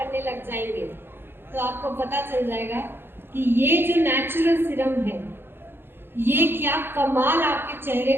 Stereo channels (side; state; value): left; late; 0.10 ms